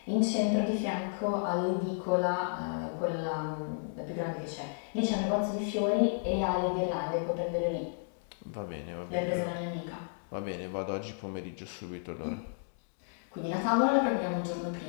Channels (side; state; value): right; silent; digital silence